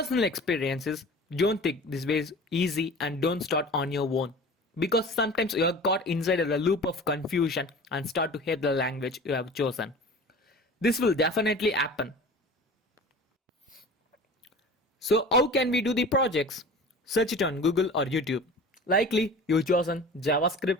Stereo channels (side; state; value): both; normal; correlation 0.39